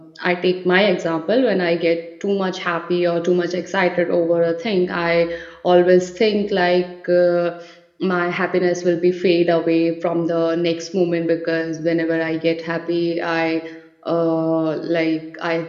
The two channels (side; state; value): both; identical; correlation 1.00